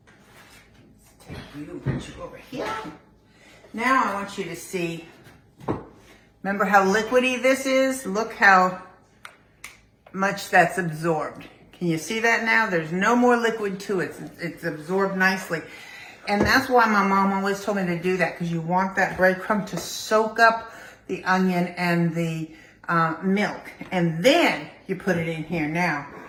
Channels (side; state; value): both; identical; correlation 1.00